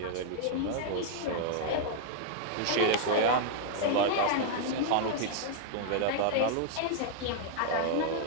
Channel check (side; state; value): both; different; correlation 0.00